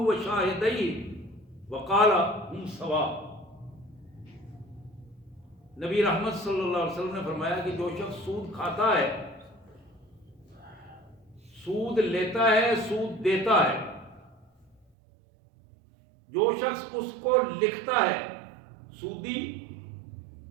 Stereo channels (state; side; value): drops out; left; at 14.9 s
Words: وقال ہم سوا. نبی رحمت صلی اللہ علیہ وسلم نے فرمایا کہ جو شخص سود کھاتا ہے، سود لیتا ہے، سود دیتا ہے، جو شخص اس کو لکھتا ہے، سودی